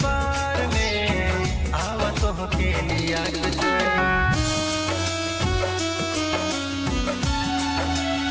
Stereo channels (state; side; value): identical; both; correlation 1.00